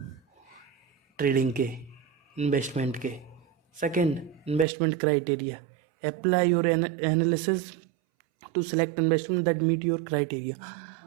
ट्रेडिंग के, इन्वेस्टमेंट के। Second, investment criteria, apply your analysis to select investment that meet your criteria.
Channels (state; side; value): drops out; left; at 4.7 s